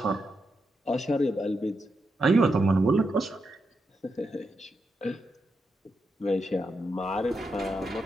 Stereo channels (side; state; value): both; normal; correlation 0.85